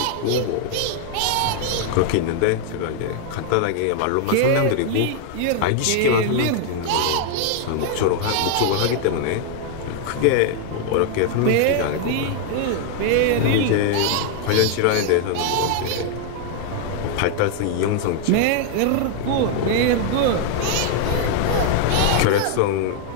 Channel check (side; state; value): both; different; correlation 0.00